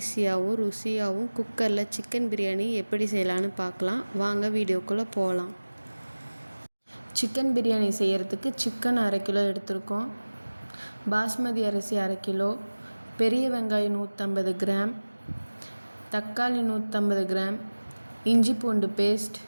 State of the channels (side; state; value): both; inverted; correlation -1.00